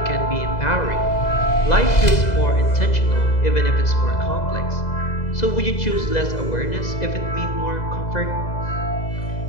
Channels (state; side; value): late; right; 2.0 ms